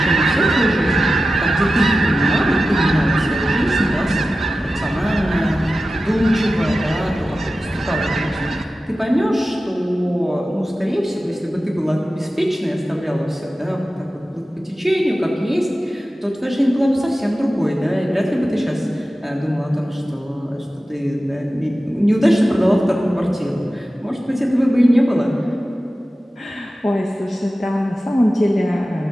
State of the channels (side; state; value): both; normal; correlation 0.94